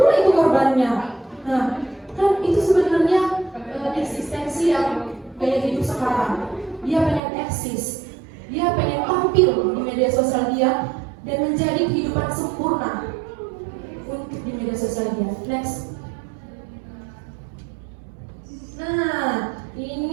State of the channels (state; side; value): drops out; left; at 7.2 s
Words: itu korbannya. Nah, kan itu sebenarnya eksistensi yang gaya hidup sekarang. Dia pengen eksis, dia pengen tampil di media sosial dia dan menjadi kehidupan sempurna untuk di media sosial dia. Next. Nah,